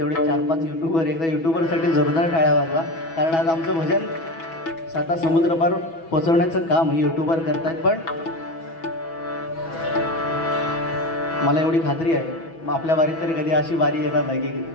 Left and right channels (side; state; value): right; late; 6.1 ms